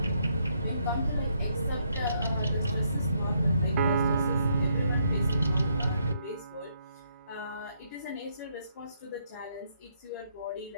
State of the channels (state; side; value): inverted; both; correlation -0.74